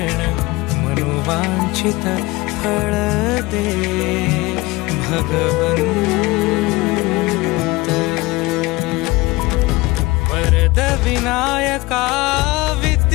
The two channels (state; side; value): quieter; right; 21.9 dB